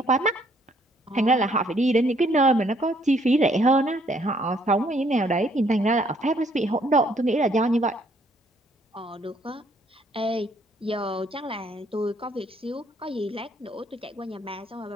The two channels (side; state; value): both; normal; correlation 0.66